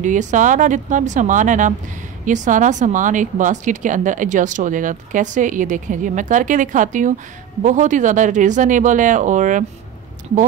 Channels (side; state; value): left; quieter; 9.4 dB